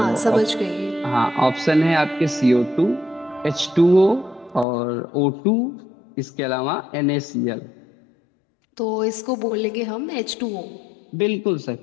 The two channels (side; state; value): right; drops out; at 4.7 s